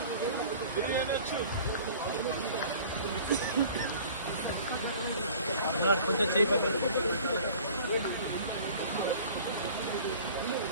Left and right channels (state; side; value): inverted; both; correlation -0.47